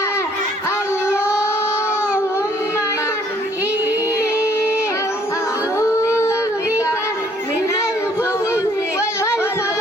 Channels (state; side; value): normal; both; correlation 0.62